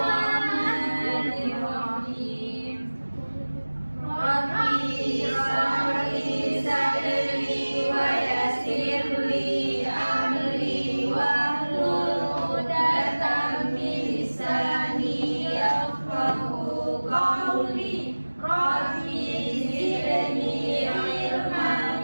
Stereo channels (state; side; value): inverted; both; correlation -1.00